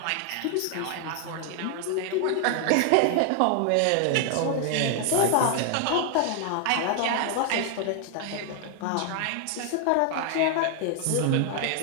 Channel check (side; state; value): both; different; correlation 0.00